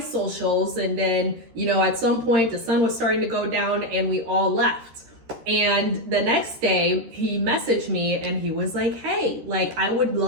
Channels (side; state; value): left; late; 13 ms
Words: And then, at some point, the sun was starting to go down and we all left. And the next day he messaged me and he was like, hey, I would